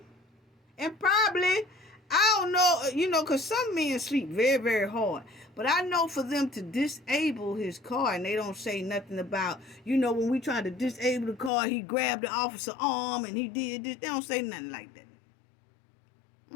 And probably, I don't know, you know, because some men sleep very, very hard. But I know for them to disable his car, and they don't say nothing about, you know, when we tried to disable the car, he grabbed the officer's arm and he did this. They don't say nothing like that.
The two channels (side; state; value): right; drops out; at 11.5 s